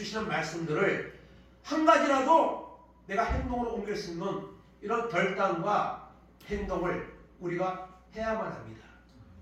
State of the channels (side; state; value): both; identical; correlation 1.00